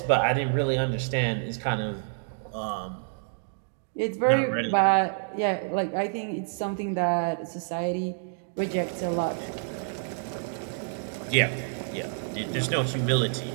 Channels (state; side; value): silent; left; digital silence